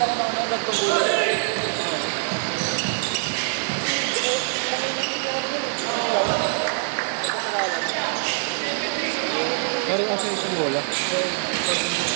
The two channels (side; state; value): left; silent; 63 dB below the other